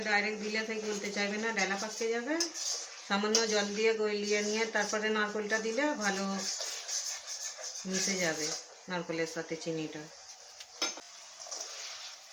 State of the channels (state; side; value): identical; both; correlation 1.00